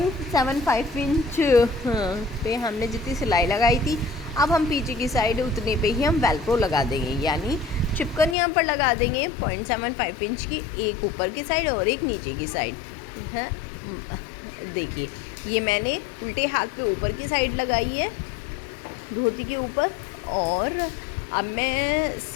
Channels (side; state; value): right; drops out; at 8.3 s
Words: पे हमने जितनी सिलाई लगाई थी, अब हम पीछे की साइड उतने पे ही हम वेलक्रो लगा देंगे, यानी चिपकन यहाँ पर लगा देंगे 0.75 इंच की, एक ऊपर की साइड और एक नीचे की साइड है। देखिए ये मैंने उल्टे हाथ पे ऊपर की साइड लगाई है धोती के ऊपर, और अब मैं